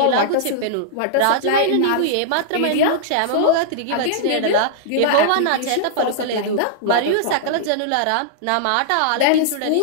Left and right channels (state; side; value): different; both; correlation -0.02